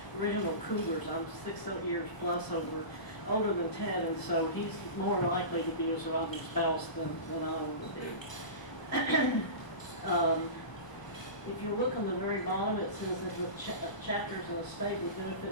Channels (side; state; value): right; late; 1.0 ms